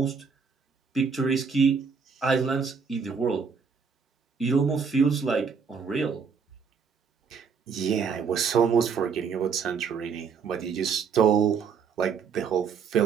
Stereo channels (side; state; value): left; quieter; 5.9 dB